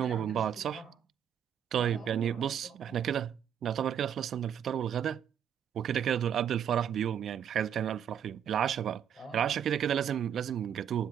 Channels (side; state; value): left; quieter; 8.9 dB